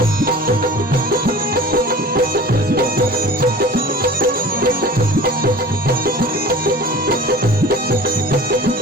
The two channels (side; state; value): both; normal; correlation 0.40